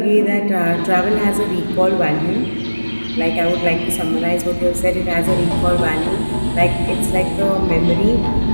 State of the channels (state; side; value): inverted; both; correlation -1.00